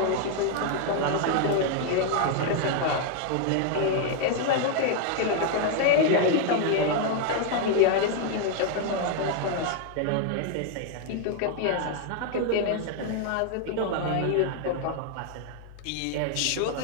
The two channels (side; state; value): both; different; correlation 0.00